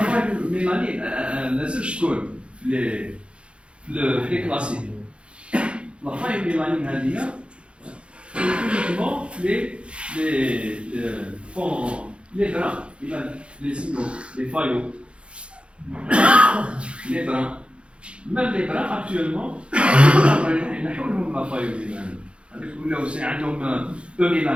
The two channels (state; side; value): late; left; 0.058 ms